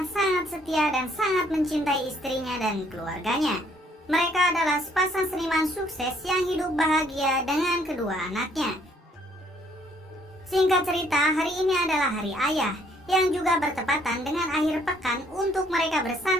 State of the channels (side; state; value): both; normal; correlation 0.65